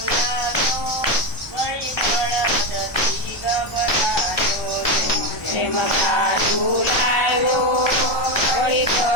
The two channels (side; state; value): right; late; 1.2 ms